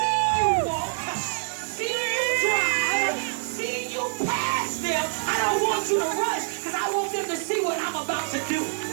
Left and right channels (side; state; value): left; silent; digital silence